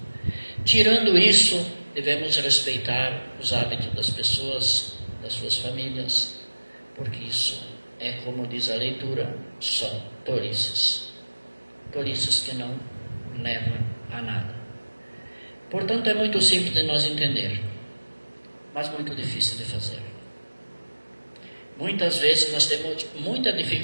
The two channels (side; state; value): both; inverted; correlation -1.00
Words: Tirando isso, devemos respeitar os hábitos das pessoas, das suas famílias, porque isso é, como diz a leitura, são tolices. Tolices que não levam a nada. Portanto, é muito simples de nós entender, mas muito difícil de fazer. Muitas vezes nós temos muita